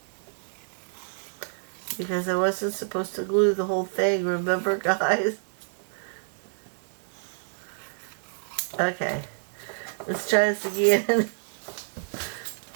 Because I wasn't supposed to glue the whole thing, remember, guys? Okay. Let's try this again.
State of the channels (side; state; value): left; silent; digital silence